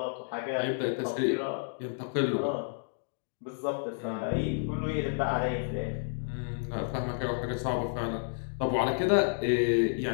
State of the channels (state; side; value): silent; right; digital silence